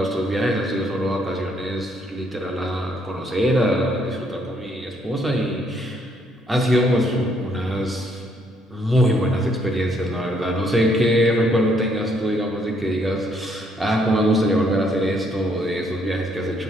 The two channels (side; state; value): both; normal; correlation 0.70